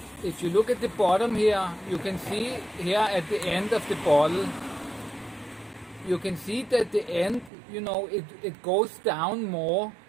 if you look at the bottom here, you can see here at the end of the bottle, you can see that the end, you know, it goes down more,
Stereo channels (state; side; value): drops out; left; at 7.5 s